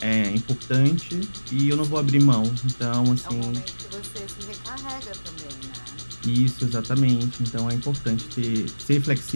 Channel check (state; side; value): inverted; both; correlation -1.00